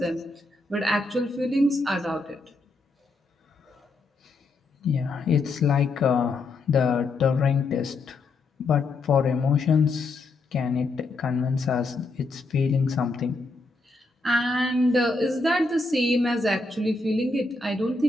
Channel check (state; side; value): quieter; right; 3.3 dB